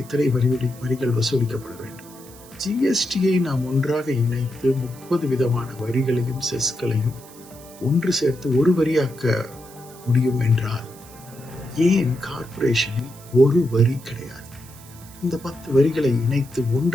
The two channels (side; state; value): right; noise; hiss, 21 dB below the sound